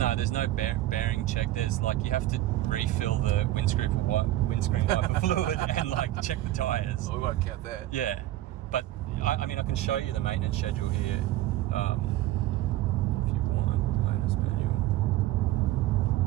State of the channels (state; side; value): quieter; left; 14.9 dB